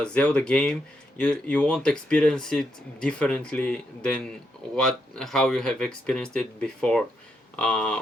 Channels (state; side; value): normal; both; correlation 0.80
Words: Zelda game, you won't experience it differently than how you have experienced it before,